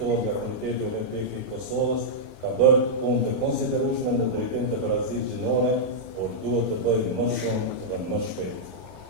nga Komiteti Olimpik I Kosovës, ka bërë punë të konsiderueshme në drejtim të Barazisë Gjinore, por duhet të bëjë më shumë dhe më shpejt.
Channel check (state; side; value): normal; both; correlation -0.08